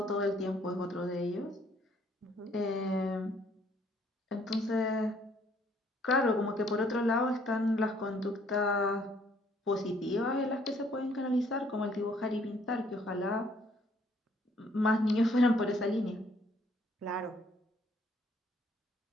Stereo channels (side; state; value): both; normal; correlation 0.64